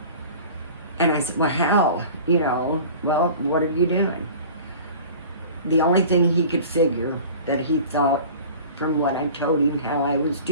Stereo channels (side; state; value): both; inverted; correlation -0.41